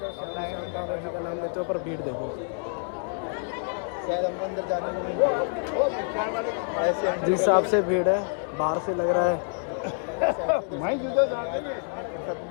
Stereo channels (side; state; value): right; silent; 59 dB below the other